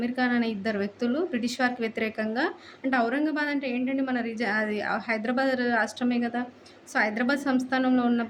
ఖాన్ అనే ఇద్దరు వ్యక్తులు బ్రిటిష్ వారికి వ్యతిరేకంగా అంటే ఔరంగాబాద్ అంటే ఏంటండి మన అది హైదరాబాద్ రాష్ట్రమే గదా! సో, హైదరాబాద్ సంస్థానంలో ఉన్న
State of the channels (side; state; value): both; identical; correlation 1.00